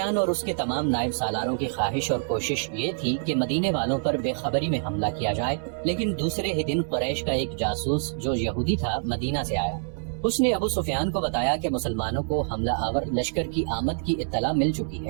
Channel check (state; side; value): silent; left; 59 dB below the other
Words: اور اس کے تمام نائب سالاروں کی خواہش اور کوشش یہ تھی کہ مدینے والوں پر بے خبری میں حملہ کیا جائے، لیکن دوسرے ہی دن قریش کا ایک جاسوس جو یہودی تھا مدینہ سے آیا۔ اس نے ابو سفیان کو بتایا کہ مسلمانوں کو حملہ آور لشکر کی آمد کی اطلاع مل چکی